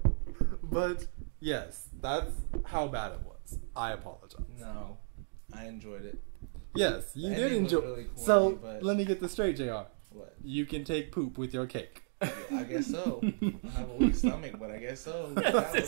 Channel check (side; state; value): left; silent; digital silence